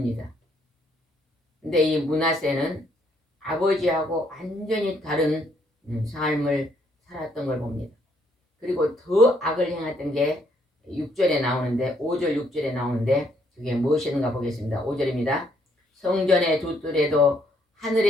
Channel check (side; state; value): both; normal; correlation 0.70